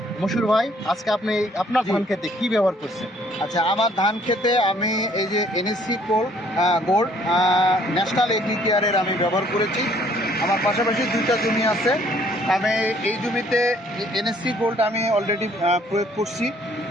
মশিউর ভাই, আজকে আপনি আপনার ধান খেতে কি ব্যবহার করছেন? আচ্ছা, আমার ধান খেতে আমি এই যে এনএসসি গোল্ড ন্যাশনাল এগ্রি কেয়ারের আমি ব্যবহার করেছি। আমার পাশাপাশি দুইটা জমি আছে। আমি এই জমিতে এনএসসি গোল্ড আমি অলরেডি প্রয়োগ করছি।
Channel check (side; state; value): both; normal; correlation 0.61